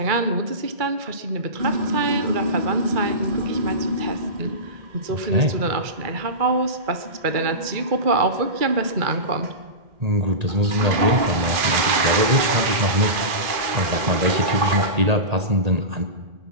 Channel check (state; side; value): late; left; 2.4 ms